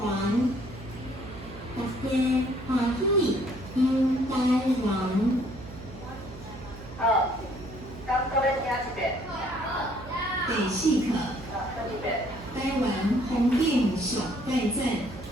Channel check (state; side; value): noise; right; hum, 14 dB below the sound